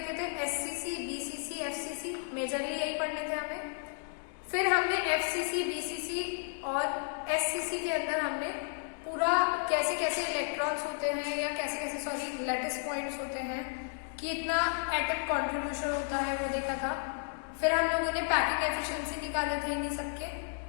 थे, एससीसी, बीसीसी, एफसीसी, मेजरली यही पढ़ने थे हमें। फिर हमने एफसीसी, बीसीसी और एससीसी के अंदर हमने पूरा कैसे कैसे इलेक्ट्रॉन्स होते हैं या कैसे कैसे लैटिस पॉइंट्स होते हैं, कि इतना एटम कंट्रीब्यूशन होता है वो देखा था। फिर हम लोगों ने पैकिंग एफिशिएंसी निकाले थे इन्हीं सबके।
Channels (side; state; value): right; silent; 56 dB below the other